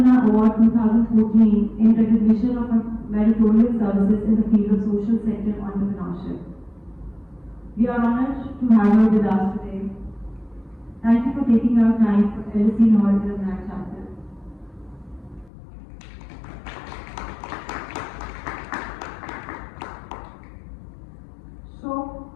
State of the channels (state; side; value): drops out; right; at 15.5 s